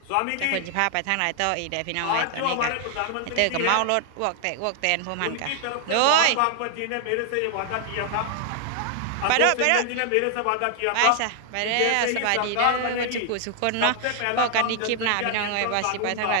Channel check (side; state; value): both; different; correlation 0.00